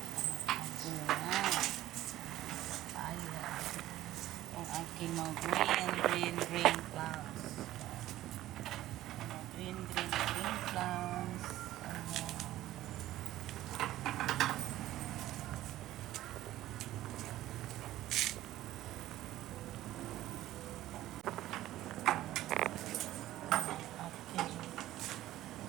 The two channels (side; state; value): left; quieter; 14.6 dB